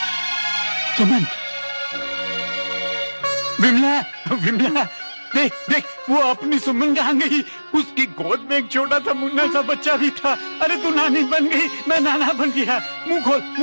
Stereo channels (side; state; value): both; inverted; correlation -1.00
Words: सुमन, विमला, विमला, देख देख, वो अपनी सुमन कहाँ गई? उसकी गोद में एक छोटा सा मुन्ना सा बच्चा भी था। अरे तू नानी बन गई, मैं नाना बन गया। मुंह खोल,